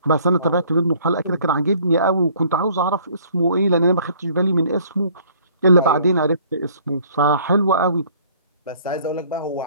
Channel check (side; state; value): both; inverted; correlation -0.57